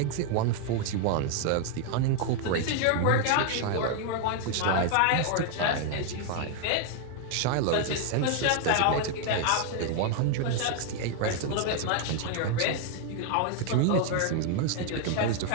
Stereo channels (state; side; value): different; both; correlation 0.00